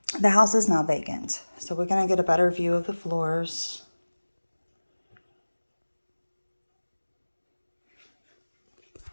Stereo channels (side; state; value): both; inverted; correlation -1.00